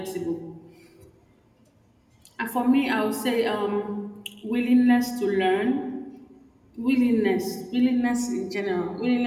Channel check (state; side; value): identical; both; correlation 1.00